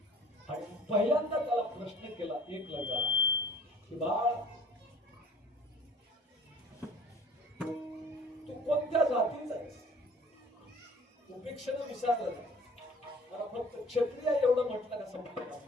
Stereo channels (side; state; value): both; normal; correlation 0.51